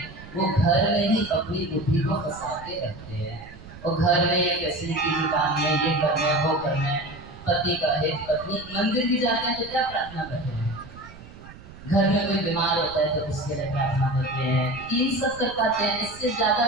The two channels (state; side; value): noise; right; rumble, 17 dB below the sound